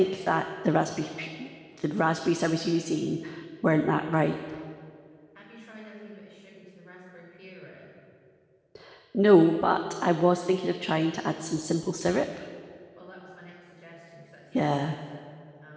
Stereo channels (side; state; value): both; identical; correlation 1.00